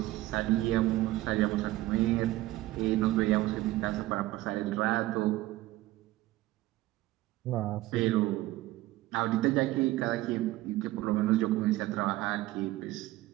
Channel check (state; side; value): quieter; left; 17.1 dB